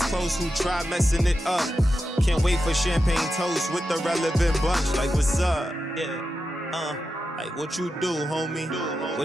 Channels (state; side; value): normal; both; correlation 0.89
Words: close who try messing it up. Can't wait for champagne toast with the relevant bunch. Like, what's up? Yeah. Like, what you do, homie?